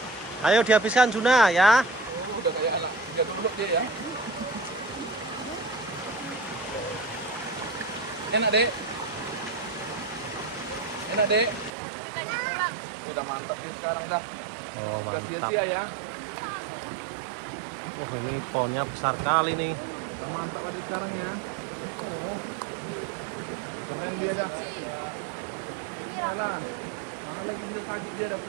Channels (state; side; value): drops out; left; at 11.7 s